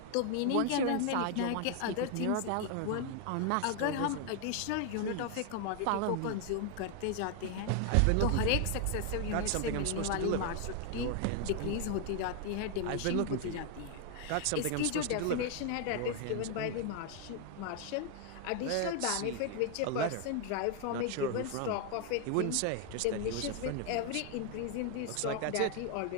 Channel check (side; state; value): both; different; correlation 0.00